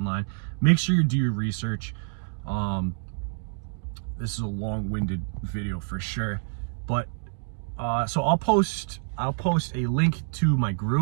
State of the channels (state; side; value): silent; left; digital silence